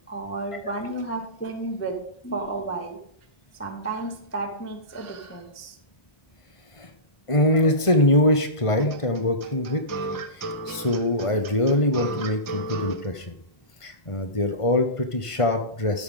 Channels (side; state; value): right; late; 1.5 ms